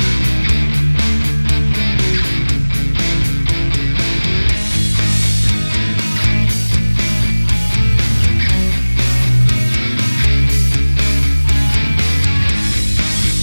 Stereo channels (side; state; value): both; inverted; correlation -1.00